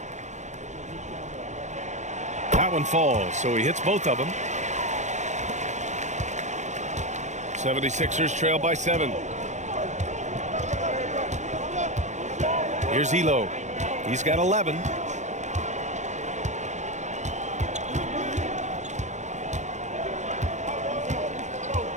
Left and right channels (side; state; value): left; late; 0.34 ms